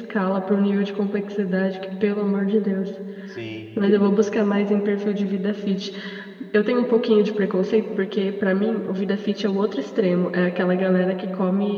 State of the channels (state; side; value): identical; both; correlation 1.00